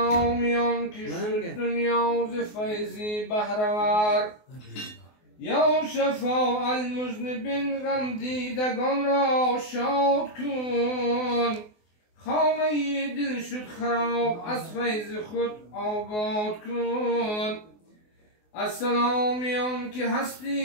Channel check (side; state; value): right; late; 24 ms